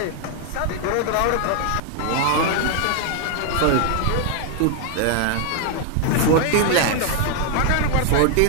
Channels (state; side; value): different; both; correlation 0.00